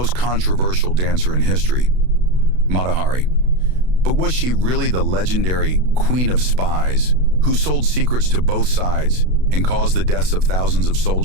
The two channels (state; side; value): late; left; 32 ms